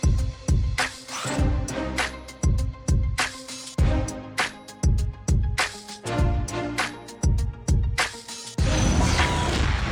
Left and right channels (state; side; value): identical; both; correlation 1.00